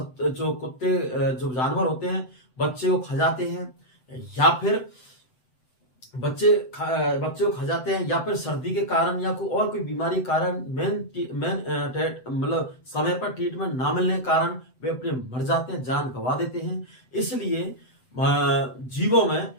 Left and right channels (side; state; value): right; late; 7.9 ms